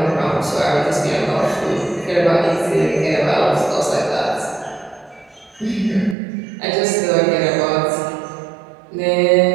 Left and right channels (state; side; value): drops out; left; at 6.2 s